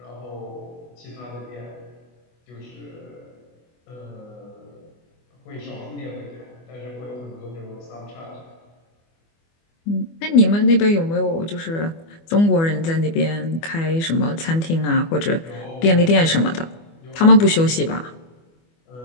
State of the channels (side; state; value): right; late; 24 ms